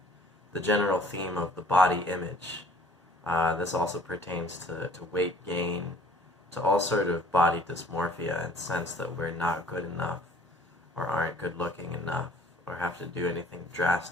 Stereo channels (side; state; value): both; normal; correlation 0.54